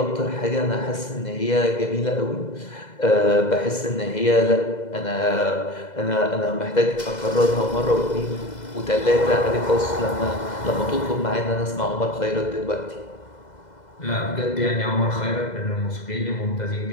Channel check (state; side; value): late; right; 2.0 ms